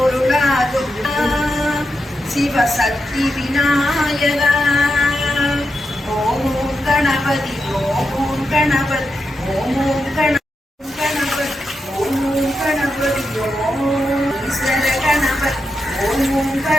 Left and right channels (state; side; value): normal; both; correlation 0.87